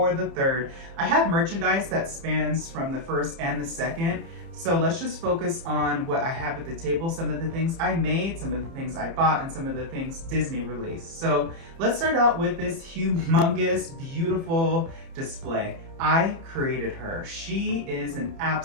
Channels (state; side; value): late; left; 30 ms